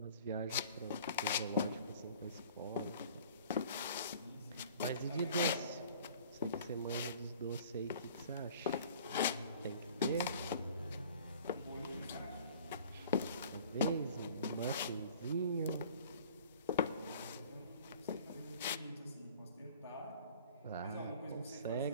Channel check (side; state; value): both; inverted; correlation -0.48